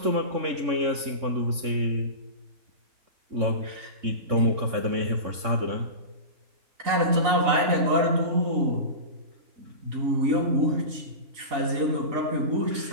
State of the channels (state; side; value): late; left; 3.6 ms